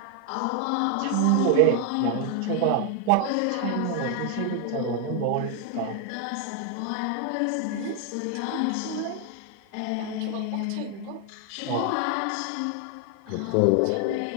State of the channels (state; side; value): different; both; correlation 0.01